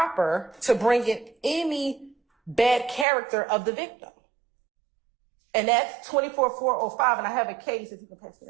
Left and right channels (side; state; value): left; drops out; at 3.1 s